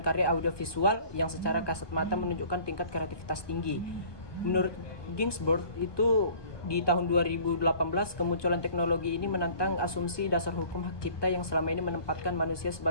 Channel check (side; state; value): right; late; 1.2 ms